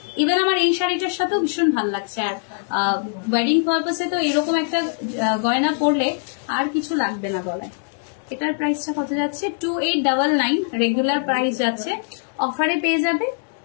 ইভেন আমার এই শাড়িটার সাথেও ভীষণ ভালো লাগছে। আর ওয়েডিং পারপাসে তো এরকম একটা গয়না পরলে আর কিছু লাগবে না গলায়। এটার প্রাইসটা কত যাচ্ছে? 2899 রেগুলার প্রাইস যাচ্ছে, অফারে পেয়ে যাবে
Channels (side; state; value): right; silent; digital silence